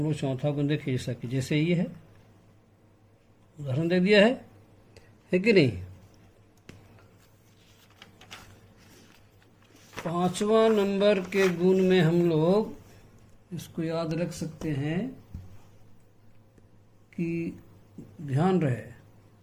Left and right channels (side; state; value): both; identical; correlation 1.00